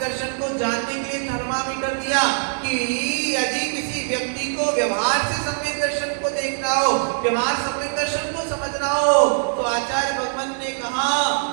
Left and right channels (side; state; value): left; silent; 64 dB below the other